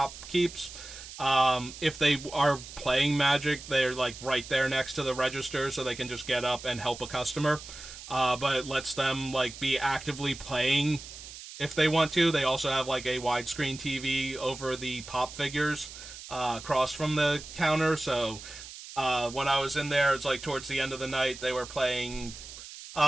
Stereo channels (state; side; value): noise; right; hiss, 14 dB below the sound